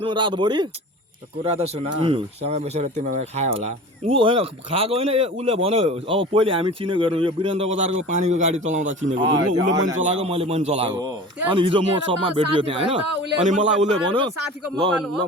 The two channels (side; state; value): both; normal; correlation 0.37